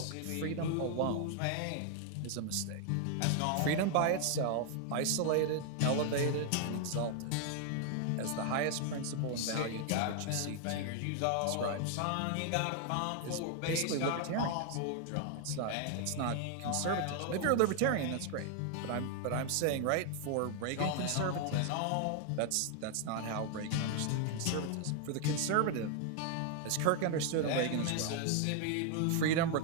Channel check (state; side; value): different; both; correlation 0.00